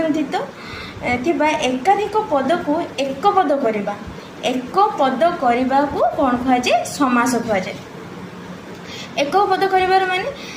थिबा एकाधिक पद को एक पद करवा एक पद करने को कौन कहुए समास कहुए। एक पद कर माने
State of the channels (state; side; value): identical; both; correlation 1.00